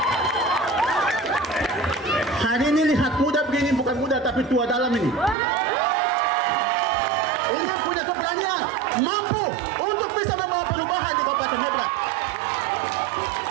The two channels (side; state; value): left; drops out; at 5.4 s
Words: Hari ini lihat muda begini, bukan muda tapi tua dalam ini. Ini punya keberanian, mampu untuk bisa membawa perubahan di Kabupaten Maibrat.